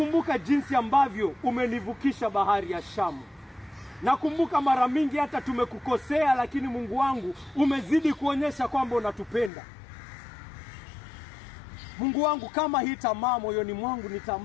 jinsi ambavyo umenivukisha bahari ya Shamu. Nakumbuka mara mingi hata tumekukosea, lakini Mungu wangu umezidi kuonyesha kwamba unatupenda. Mungu wangu, kama hii tamaa moyoni mwangu ni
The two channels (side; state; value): right; drops out; at 9.5 s